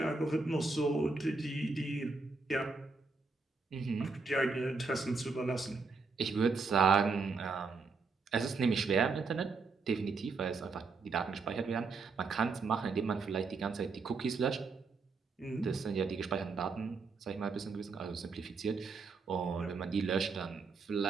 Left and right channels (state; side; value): quieter; left; 4.3 dB